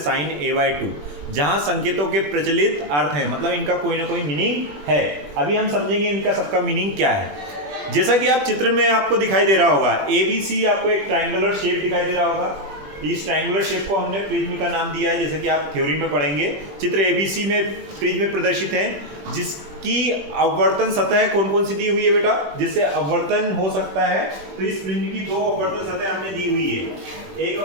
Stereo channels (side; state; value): left; late; 20 ms